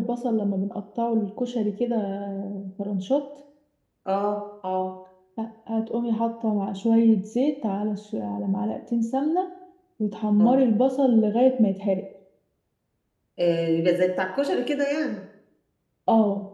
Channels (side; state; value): both; identical; correlation 1.00